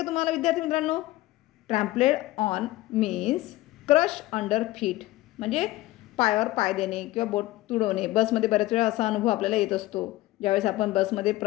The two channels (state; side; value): quieter; right; 17.5 dB